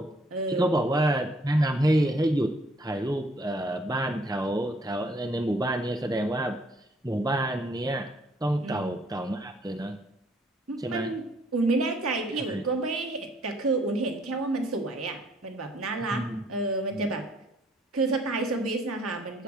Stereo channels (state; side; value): normal; both; correlation 0.63